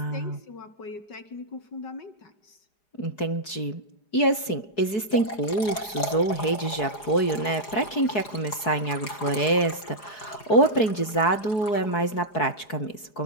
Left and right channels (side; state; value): right; late; 4.6 ms